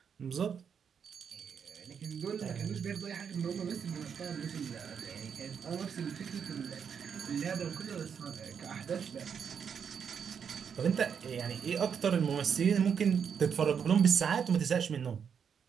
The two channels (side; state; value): left; quieter; 7.2 dB